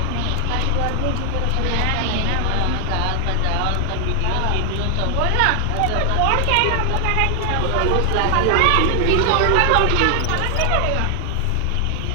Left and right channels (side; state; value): both; different; correlation 0.00